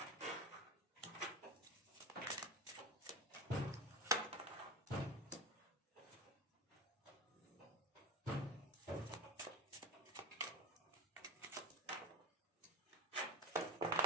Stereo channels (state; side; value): normal; both; correlation 0.26